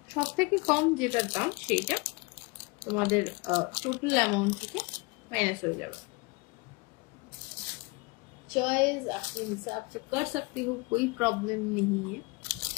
সব থেকে কম যেটার দাম সেইটা তোমাদের টোটাল অ্যামাউন্ট থেকে माइनस हो जाएगा। चॉइस अपने हिसाब से कर सकती हो, कोई प्रॉब्लम नहीं है।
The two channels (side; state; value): right; quieter; 26.4 dB